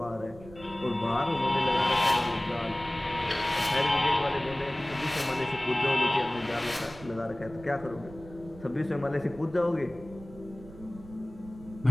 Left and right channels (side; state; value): right; noise; rumble, 18 dB below the sound